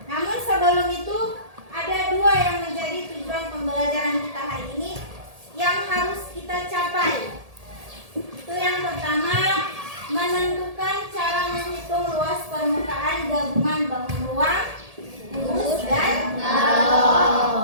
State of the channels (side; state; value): left; late; 1.7 ms